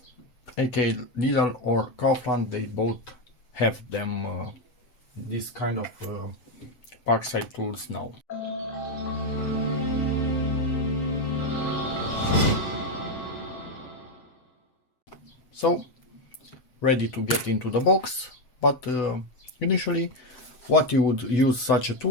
aka Lidl or Kaufland. They both have them, this kind of PARKSIDE tools now. So, ready to get into the box, but initially what you would use such a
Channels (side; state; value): right; late; 7.5 ms